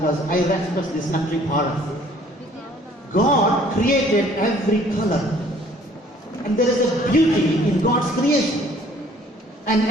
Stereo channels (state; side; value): normal; both; correlation 0.57